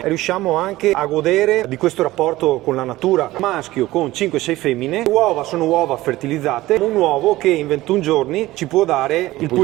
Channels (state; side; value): quieter; left; 17.4 dB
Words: riusciamo anche a godere di questo rapporto con la natura. Maschio con 5-6 femmine, le uova sono uova fertilizzate, un uovo che in 21 giorni ci può dare il